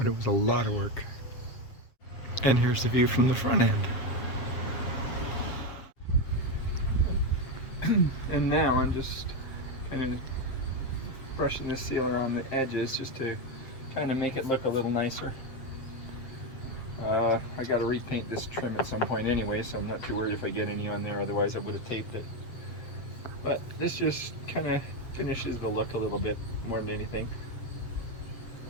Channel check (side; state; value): right; late; 7.3 ms